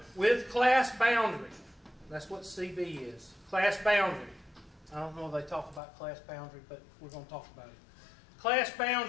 with class boundary, that's what CB is. Class boundary. I don't know if they talk about class boundary, but we're going to talk about it. Class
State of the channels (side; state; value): right; drops out; at 5.8 s